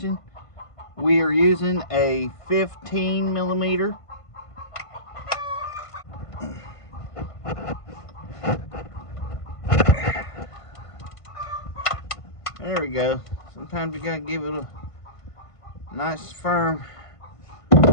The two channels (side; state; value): right; late; 1.5 ms